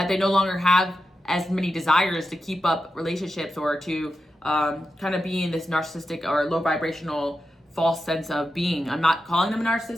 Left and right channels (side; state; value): both; normal; correlation 0.90